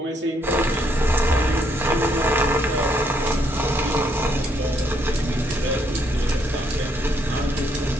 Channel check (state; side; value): normal; both; correlation 0.72